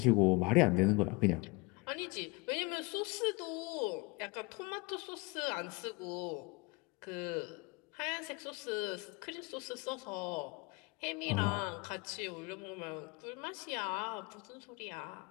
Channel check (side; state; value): right; quieter; 26.7 dB